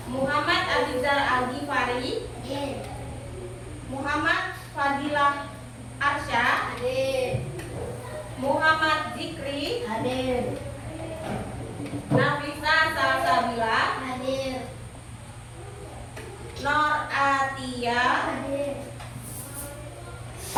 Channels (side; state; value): both; identical; correlation 1.00